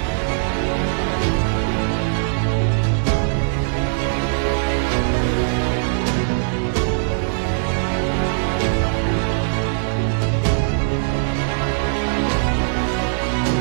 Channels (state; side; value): silent; left; digital silence